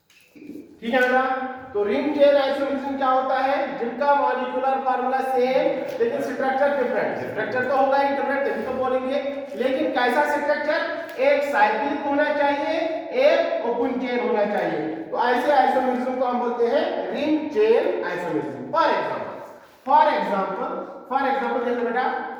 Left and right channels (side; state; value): both; identical; correlation 1.00